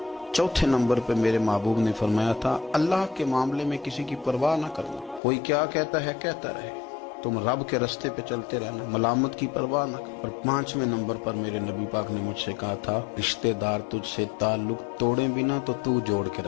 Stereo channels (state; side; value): drops out; right; at 5.2 s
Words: چوتھے نمبر پہ میرے محبوب نے فرمایا تھا اللہ کے معاملے میں کسی کی پرواہ نہ کرنا، کوئی کیا کہتا ہے کہتا رہے، تم رب کے رستے پہ چلتے رہنا، ملامت کی پرواہ نہ کر۔ اور 5ویں نمبر پر میرے نبی پاک نے مجھ سے کہا تھا رشتہ دار تجھ سے تعلق توڑیں بھی نہ تو تو جوڑ کے